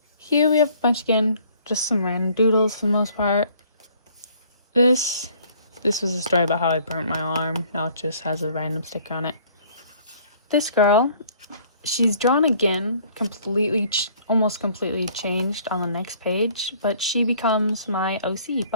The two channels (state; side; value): inverted; both; correlation -0.57